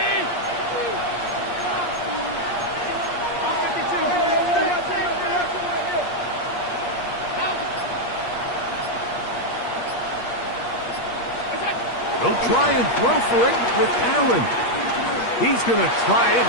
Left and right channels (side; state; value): right; late; 8.5 ms